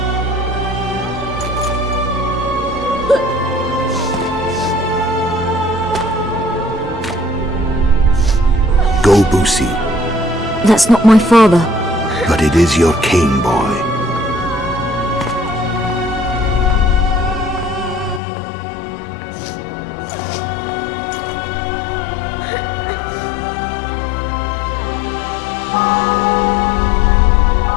Go, Boosie. That's not my father. But it is your king, boy.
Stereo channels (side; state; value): right; drops out; at 18.2 s